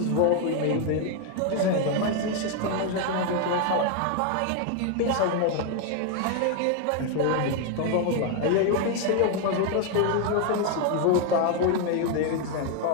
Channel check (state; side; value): different; both; correlation 0.01